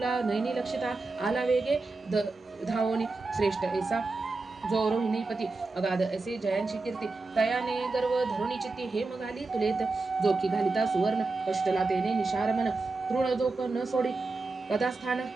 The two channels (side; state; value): left; quieter; 3.6 dB